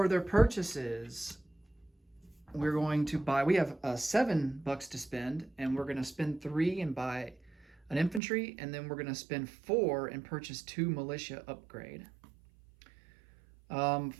their purchases, we're going to buy, we have $7 to spend, and we're going to spend 3 and buy an infantry, and then we're going to spend 4 and purchase 2 militia upgrade.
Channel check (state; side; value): drops out; left; at 8.2 s